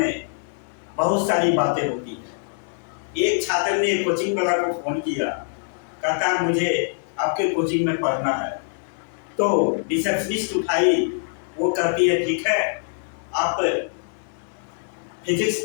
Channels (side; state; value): right; silent; 63 dB below the other